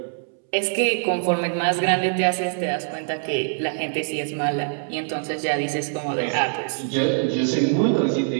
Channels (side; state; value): left; silent; 63 dB below the other